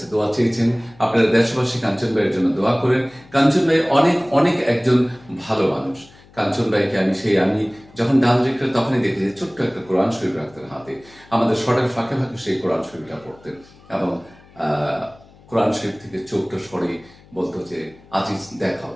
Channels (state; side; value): noise; left; hum, 25 dB below the sound